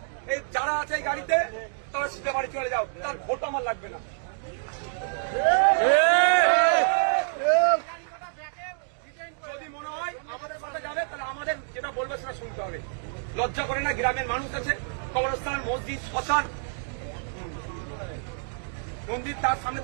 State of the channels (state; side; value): silent; left; digital silence